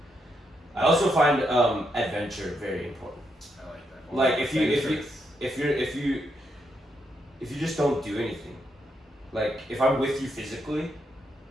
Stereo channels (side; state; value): both; normal; correlation 0.80